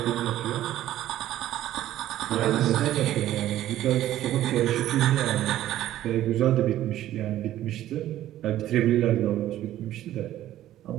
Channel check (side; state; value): left; quieter; 13.3 dB